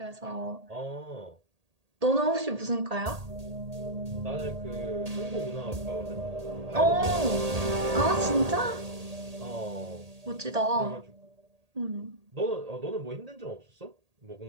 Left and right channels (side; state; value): left; late; 1.8 ms